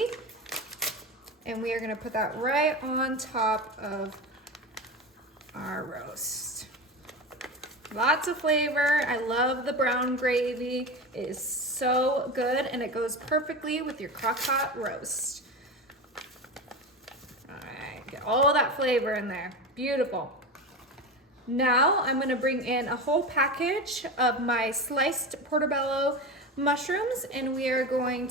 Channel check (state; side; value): normal; both; correlation 0.25